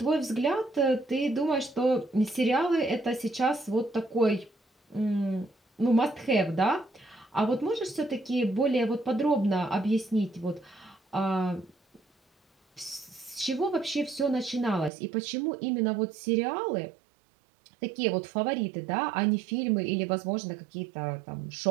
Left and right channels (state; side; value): drops out; left; at 14.9 s